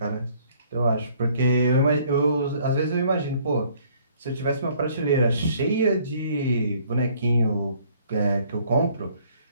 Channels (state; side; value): inverted; both; correlation -0.60